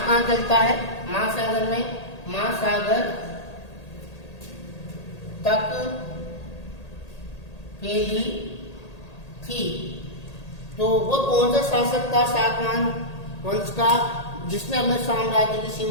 कहाँ चलता है, महासागर में, महासागर तक फैली थी। तो वो कौन सा शासक था सातवाहन वंश का, जिसने अपने साम्राज्य की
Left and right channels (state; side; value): late; right; 1.8 ms